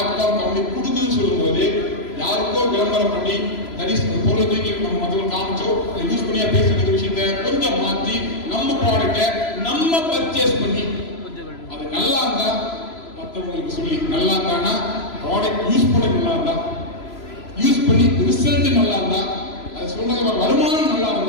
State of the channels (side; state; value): right; late; 3.0 ms